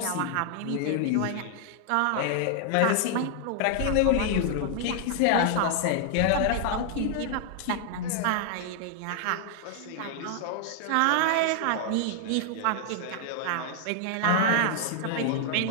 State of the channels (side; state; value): both; different; correlation 0.00